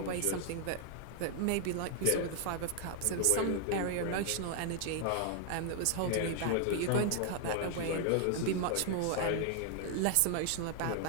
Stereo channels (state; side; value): different; both; correlation 0.00